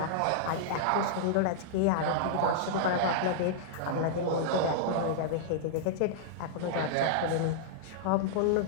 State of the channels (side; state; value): both; different; correlation -0.02